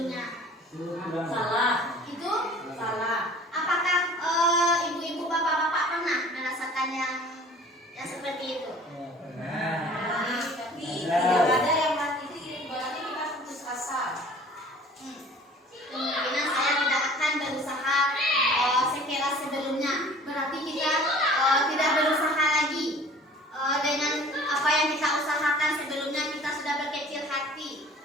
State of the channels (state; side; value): normal; both; correlation 0.48